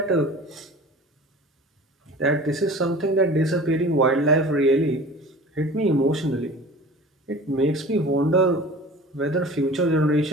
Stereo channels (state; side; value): normal; both; correlation 0.41